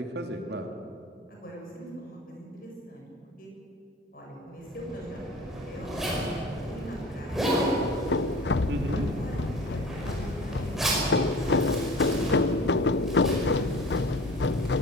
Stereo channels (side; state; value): both; normal; correlation 0.40